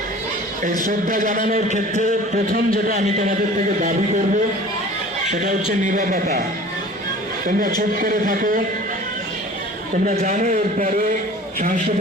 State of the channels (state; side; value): normal; both; correlation 0.44